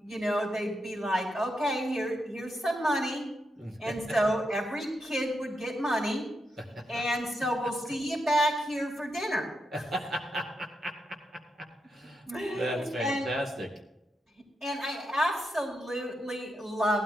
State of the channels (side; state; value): both; normal; correlation 0.84